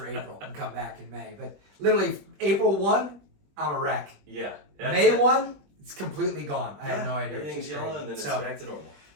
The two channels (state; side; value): late; left; 21 ms